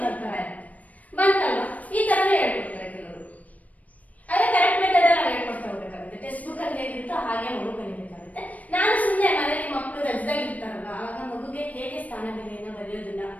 ತರ ಇರುತ್ತೆ. ಬಂತಲ್ವಾ? ಈ ತರನೇ ಹೇಳ್ಕೊಡ್ತಾರೆ ಕೆಲವರು. ಅದೇ ಕರೆಕ್ಟ್ ಮೆಥಡ್ ನಾವು ಹೇಳ್ಕೊಡ್ತಾ ಹೋಗ್ಬೇಕಾಗುತ್ತೆ. ಟೆಕ್ಸ್ಟ್ ಬುಕ್ ಅಲ್ಲಿ ಹೇಗಿರುತ್ತೋ ಹಾಗೆ ಮಗು ಕಲಿಬೇಕಾಗುತ್ತೆ. ನಾನು ಸುಮ್ಮನೆ ಮನೆಯಲ್ಲಿ ಮಕ್ಕಳು ರಜದಲ್ಲಿ ಇರ್ತಾರಲ್ಲ, ಆಗ ಮಗುಗೆ ಹೇಗೆ ಸ್ಥಾನ ಬೆಲೆಯನ್ನ ಬರೆಯೋದನ್ನ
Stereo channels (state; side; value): late; right; 0.071 ms